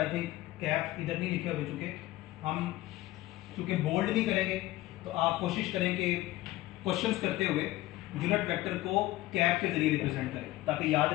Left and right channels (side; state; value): right; quieter; 17.1 dB